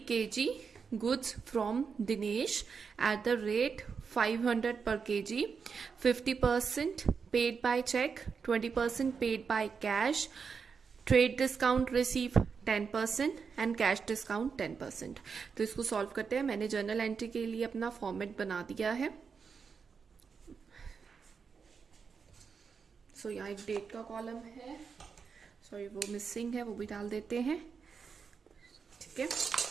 kg goods from Dinesh at the rate 500 per kg, 50% paid by cheque, 20% paid by cash, trade discount receive 10% and cash discount 10%। तो इसको सॉल्व करते हैं। मैंने जर्नल एंट्री के लिए अपना फॉर्मेट बना दिया है। सो यहाँ एक डेट का कॉलम है, सॉरी वो मिसिंग है, वो भी डाल देते हैं। ठीक है,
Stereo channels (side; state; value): left; quieter; 5.8 dB